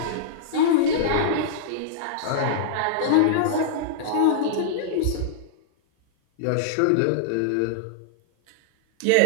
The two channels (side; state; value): both; different; correlation -0.02